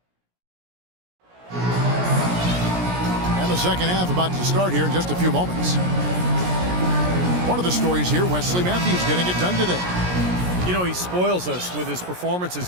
And the second half about to start here in just a few moments. One of the stories here, Wesley Matthews getting it done today. You know, he spoils us with his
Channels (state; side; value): late; left; 17 ms